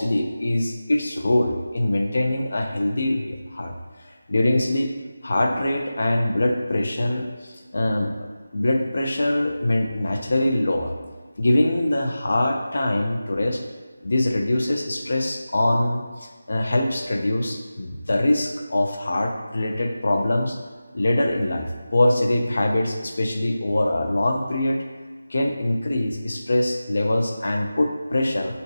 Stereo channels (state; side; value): inverted; both; correlation -0.95